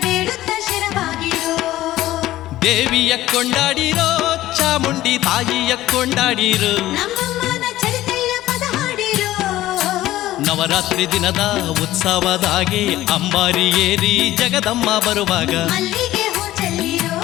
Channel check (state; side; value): quieter; right; 15.2 dB